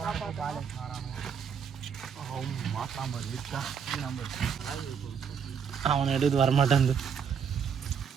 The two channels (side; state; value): left; quieter; 7.0 dB